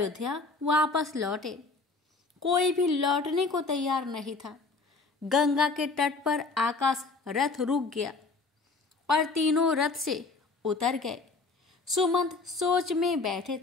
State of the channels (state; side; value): quieter; right; 3.9 dB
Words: वापस लौटे। कोई भी लौटने को तैयार नहीं था। गंगा के तट पर आकाश रथ रुक गया और तीनों रथ से उतर गए। सुमंत सोच में बैठे